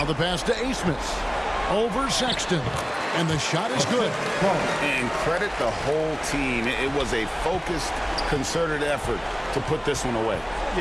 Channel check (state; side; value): identical; both; correlation 1.00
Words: the pass to Asmus. Over Sexton. And the shot is good. And credit the whole team. It was a focused, concerted effort to put this one away.